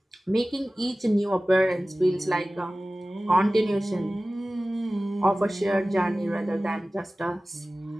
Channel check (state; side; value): normal; both; correlation 0.97